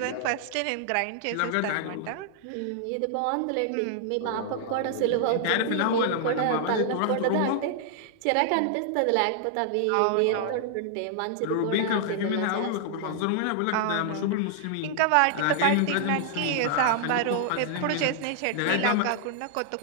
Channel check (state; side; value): different; both; correlation -0.01